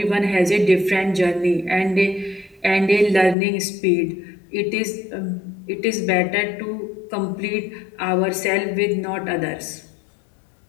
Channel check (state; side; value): drops out; right; at 3.4 s